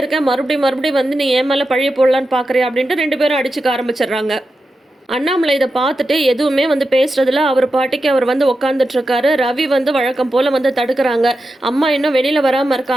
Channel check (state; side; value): normal; both; correlation 0.90